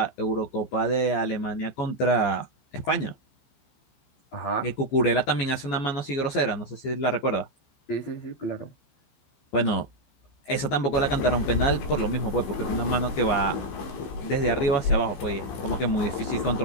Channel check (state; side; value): late; right; 14 ms